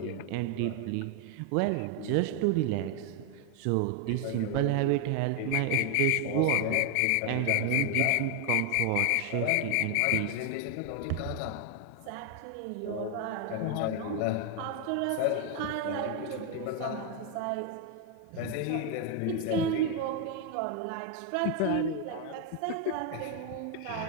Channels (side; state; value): both; different; correlation 0.00